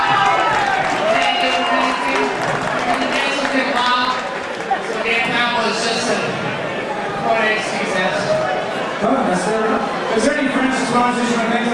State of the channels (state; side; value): identical; both; correlation 1.00